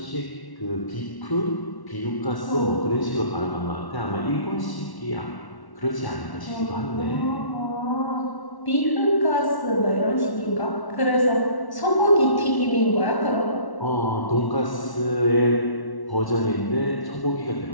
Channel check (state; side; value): late; right; 1.1 ms